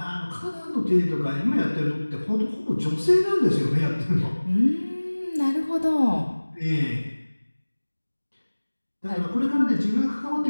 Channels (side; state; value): both; inverted; correlation -1.00